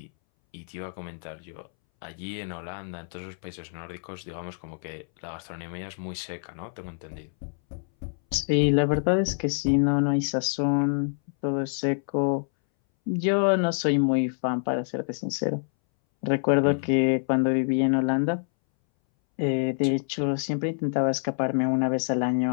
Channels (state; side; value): silent; right; 60 dB below the other